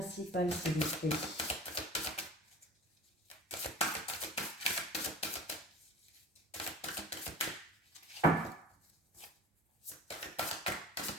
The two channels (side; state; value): both; normal; correlation 0.40